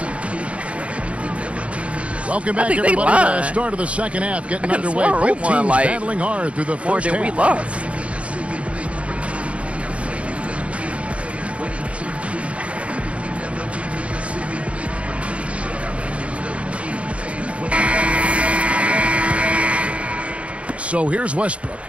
Welcome back, everybody, to the start of the second half. Getting underway. Both teams battling hard through the first half. More than we lost. So here's Westbrook.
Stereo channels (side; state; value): left; late; 0.062 ms